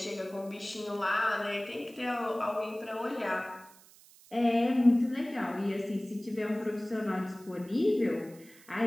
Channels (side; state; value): right; noise; hiss, 24 dB below the sound